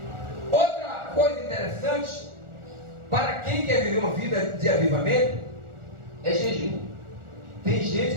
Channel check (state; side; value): late; left; 1.4 ms